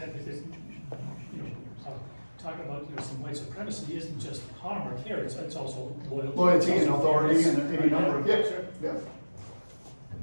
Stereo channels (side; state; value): both; inverted; correlation -1.00